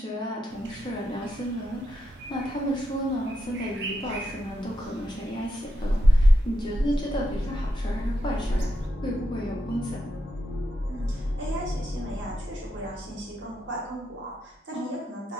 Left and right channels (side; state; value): both; normal; correlation 0.84